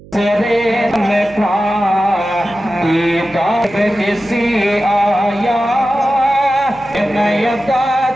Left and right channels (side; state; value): right; noise; hum, 21 dB below the sound